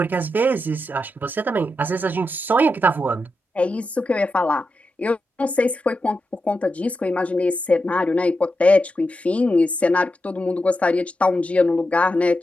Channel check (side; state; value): both; normal; correlation 0.88